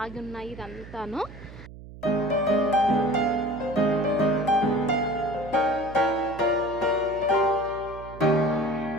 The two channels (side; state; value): right; noise; hum, 16 dB below the sound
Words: ఆగి ఉన్నాయి. ఇదంతాను